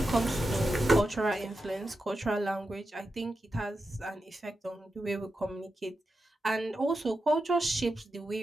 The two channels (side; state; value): both; normal; correlation 0.89